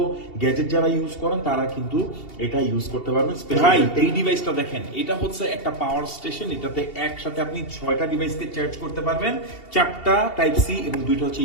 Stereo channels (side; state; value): right; late; 2.7 ms